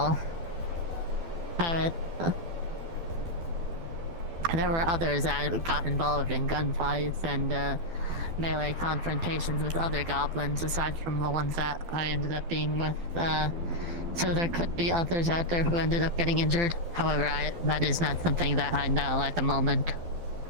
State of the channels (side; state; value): left; late; 12 ms